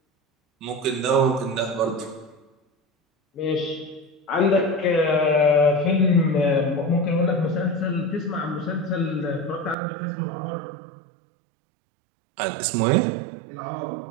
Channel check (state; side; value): drops out; left; at 9.8 s